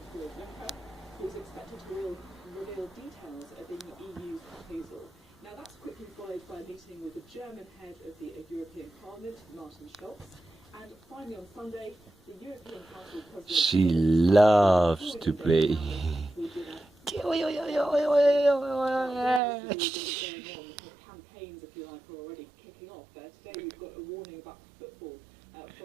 Juncker, who is expected to reveal details of the EU's proposal. Now that's quickly followed by a meeting with the German head of the European Parliament, Martin Schulz. And finally on Sunday, the European Council President... She loves to play. Campaigns, if you like, are already kicking off. Today we've got a warning about football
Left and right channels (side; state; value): left; drops out; at 19.4 s